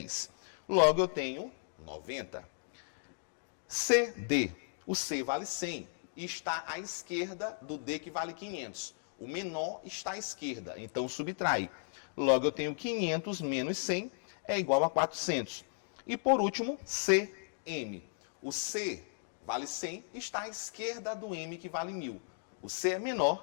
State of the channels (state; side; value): silent; right; digital silence